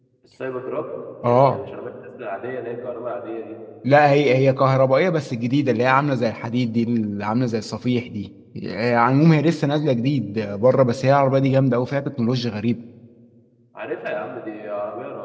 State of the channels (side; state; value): both; identical; correlation 1.00